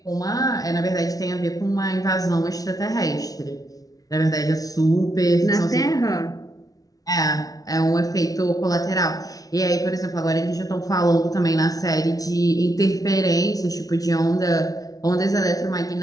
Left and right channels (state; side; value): late; right; 0.18 ms